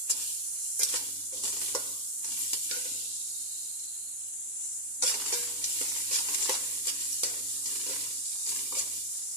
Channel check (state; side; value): normal; both; correlation -0.01